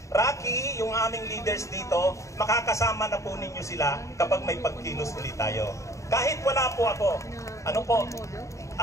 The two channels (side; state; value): right; late; 0.15 ms